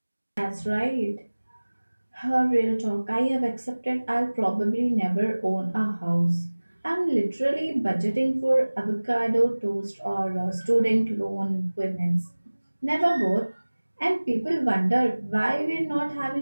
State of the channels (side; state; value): both; inverted; correlation -1.00